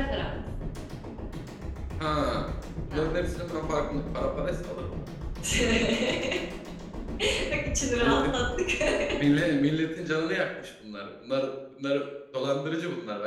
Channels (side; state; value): both; identical; correlation 1.00